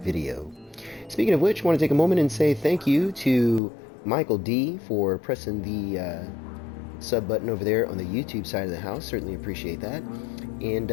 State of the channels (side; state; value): right; drops out; at 3.6 s